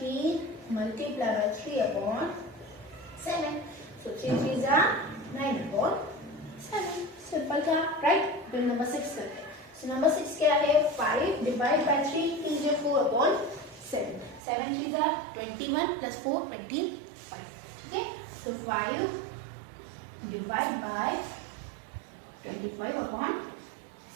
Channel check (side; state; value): left; drops out; at 14.4 s